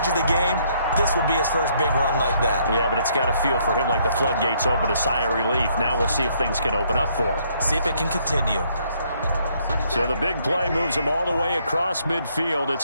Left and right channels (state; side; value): inverted; both; correlation -0.68